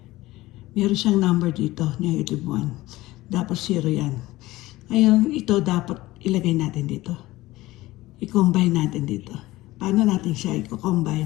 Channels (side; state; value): right; quieter; 18.1 dB